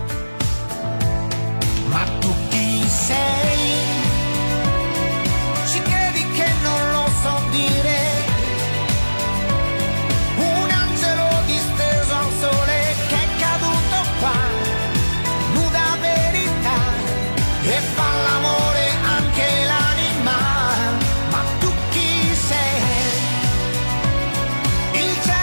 Ma tu chi sei? Ci credi che non lo so dire? Un angelo disteso al sole che è caduto qua, nuda verità, e fa l'amore anche l'anima. Ma tu chi sei? Il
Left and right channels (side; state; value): both; inverted; correlation -1.00